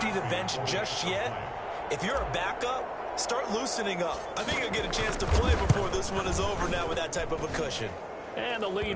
the bench just yet, if you're a backup, start loosening up. I think you'll get a chance to play before this one is over now with that type of a cushion. And the lead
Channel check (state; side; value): identical; both; correlation 1.00